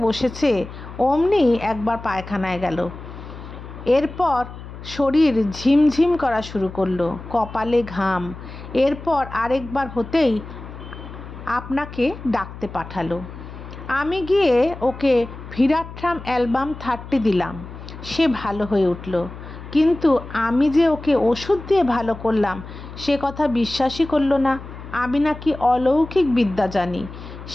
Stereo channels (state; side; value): noise; left; hum, 13 dB below the sound